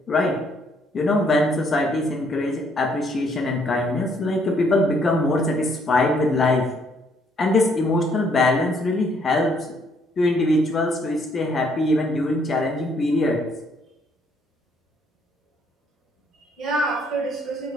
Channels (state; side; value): normal; both; correlation 0.68